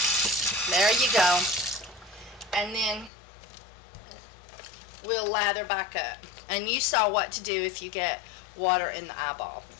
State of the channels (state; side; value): drops out; right; at 3.1 s